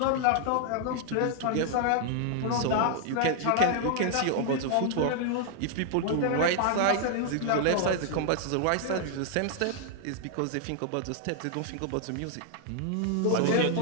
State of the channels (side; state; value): both; different; correlation 0.00